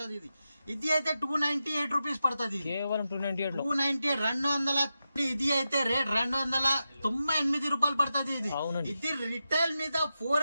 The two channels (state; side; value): inverted; both; correlation -0.90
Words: ఇది అయితే 298 రూపీస్ పడుతుంది. 298 ఇది అయితే రేట్ 298 రూపాయలు పడుతుంది. ఇది రిటైల్ మీద